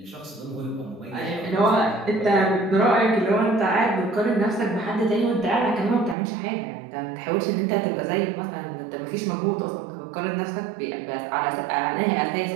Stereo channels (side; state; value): left; drops out; at 6.2 s